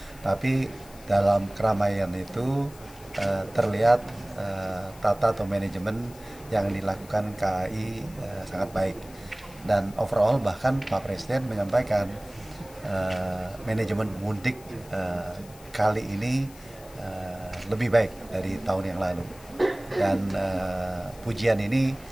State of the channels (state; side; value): noise; left; hiss, 22 dB below the sound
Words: Tapi dalam keramaian itu terlihat tata atau manajemen yang dilakukan KAI sangat baik. Dan overall bahkan Pak Presiden menyampaikan manajemen mudik kali ini lebih baik dari tahun yang lalu. Dan pujian ini